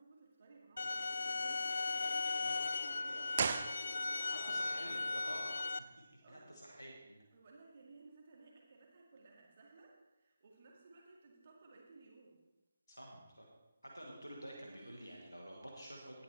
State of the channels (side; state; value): both; inverted; correlation -0.89